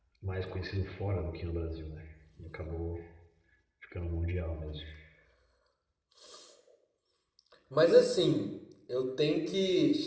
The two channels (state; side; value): identical; both; correlation 1.00